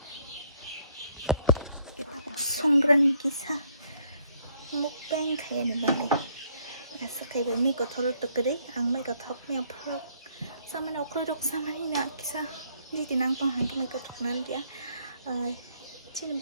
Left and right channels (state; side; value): inverted; both; correlation -0.67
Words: cái ta 송그라니 기사 먹방 가야는 말이 그래서 가이버 미고 털었다 그래 안 미고 턱면 풀어 사만 어크르륵 사만이나 기사 니디 낭빵 한개 미고 턱나는 게야 지는